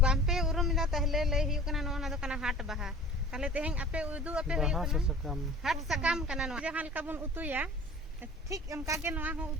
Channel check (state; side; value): normal; both; correlation 0.43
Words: ᱵᱟᱝ ᱯᱮ ᱩᱨᱩᱢᱮᱫᱟ ᱛᱟᱦᱞᱮ ᱞᱟᱹᱭ ᱦᱩᱭᱩᱜ ᱠᱟᱱᱟ ᱱᱚᱣᱟ ᱫᱚ ᱠᱟᱱᱟ ᱦᱟᱴ ᱵᱟᱦᱟ ᱛᱟᱦᱞᱮ ᱛᱮᱦᱮᱧ ᱟᱯᱮ ᱩᱫᱩᱜ ᱟᱯᱮ ᱦᱩᱭᱩᱜ ᱠᱟᱱᱟ ᱦᱟᱴ ᱥᱟᱠᱟᱢ ᱠᱟᱱᱟ ᱱᱚᱣᱟ ᱡᱟᱦᱟᱸ ᱞᱮᱠᱟ ᱵᱚᱱ ᱩᱛᱩᱭᱟ ᱴᱷᱤᱠ ᱚᱱᱠᱟ ᱜᱮ ᱱᱚᱣᱟ ᱦᱚᱸ